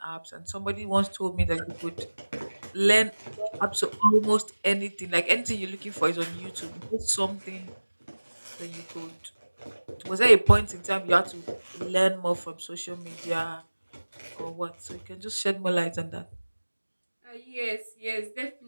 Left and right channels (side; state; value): both; inverted; correlation -1.00